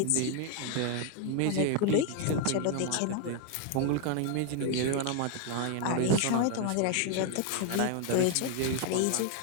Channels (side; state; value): both; different; correlation 0.01